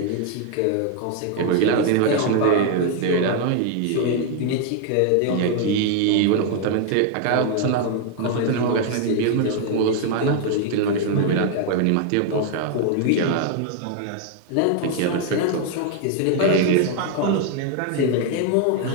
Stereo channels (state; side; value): different; both; correlation 0.00